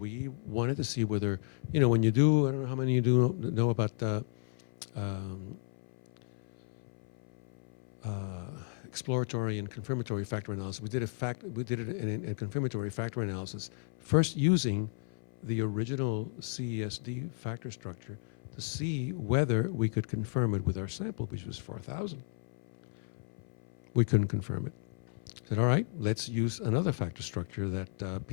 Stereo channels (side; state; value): right; silent; 55 dB below the other